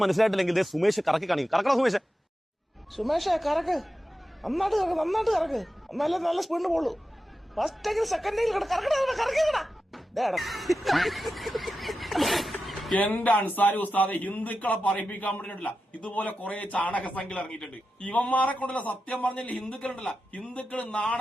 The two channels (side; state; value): both; normal; correlation 0.91